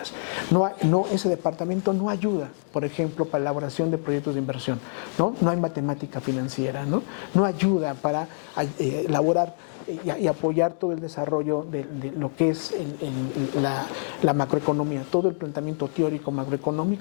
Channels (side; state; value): right; silent; digital silence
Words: Ese departamento no ayuda, por ejemplo, para la elaboración de proyectos de inversión, ¿no? No hay matemática financiera, ¿no? No ayuda para elaborar y apoyar todo el desarrollo de lo que es la macroeconomía, todo el planteamiento teórico